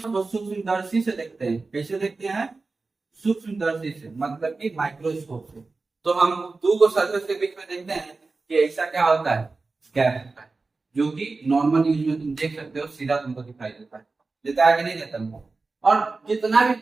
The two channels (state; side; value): quieter; left; 3.8 dB